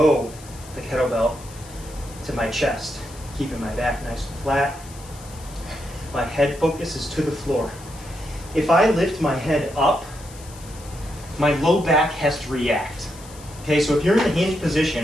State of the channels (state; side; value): noise; left; hiss, 19 dB below the sound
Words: the kettlebell to my chest, keeping my back nice and flat. My head focus is to the floor. If I lift my head up, my low back has to react. Okay, so if you're in the hinge